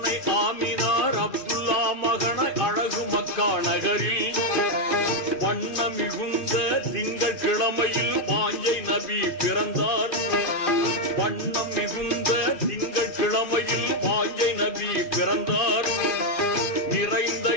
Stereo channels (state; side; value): late; right; 2.5 ms